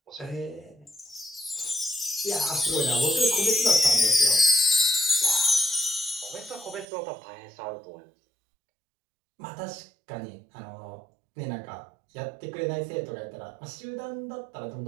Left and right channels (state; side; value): drops out; left; at 6.9 s